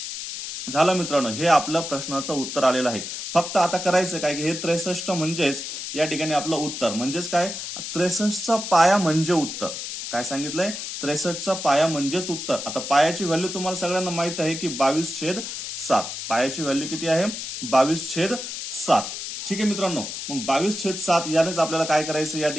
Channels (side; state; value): left; noise; hiss, 7 dB below the sound